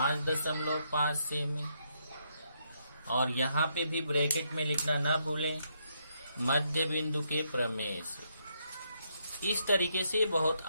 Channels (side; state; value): both; inverted; correlation -0.76